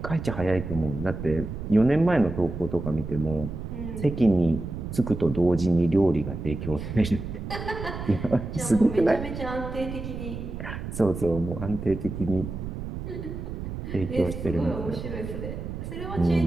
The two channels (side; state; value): right; noise; rumble, 7 dB below the sound